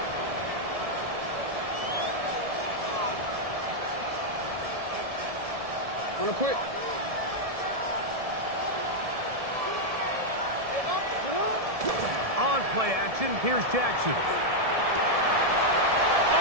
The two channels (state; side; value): late; left; 1.7 ms